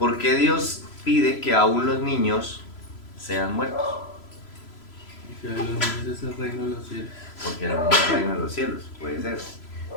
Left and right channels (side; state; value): right; late; 3.0 ms